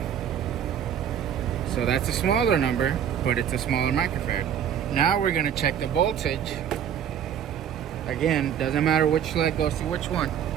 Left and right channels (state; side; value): quieter; left; 9.1 dB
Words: So that's a smaller number, but it's a smaller microfarad. Now we're going to check the voltage. Again, doesn't matter which leg goes to which one.